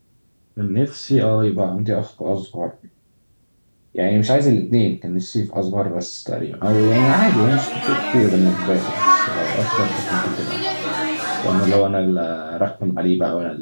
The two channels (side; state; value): both; inverted; correlation -1.00